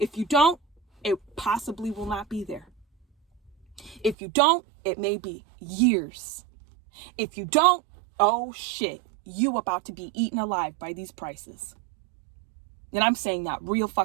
you don't, it possibly will not be there. If you don't, it may be years. If you don't, oh shit, you about to be eaten alive by these prices. And I'm saying that real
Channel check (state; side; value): drops out; left; at 4.2 s